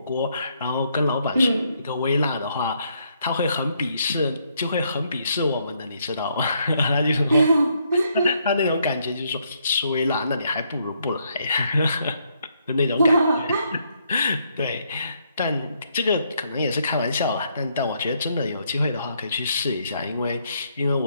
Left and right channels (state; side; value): inverted; both; correlation -0.73